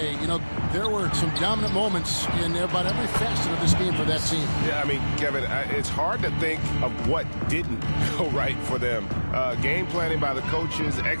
you know, there were some dominant moments in about every facet of this game for that team. Yeah, I mean, Kevin, it's hard to think of what didn't go right for them. Game planning by the coaches,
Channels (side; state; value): both; inverted; correlation -1.00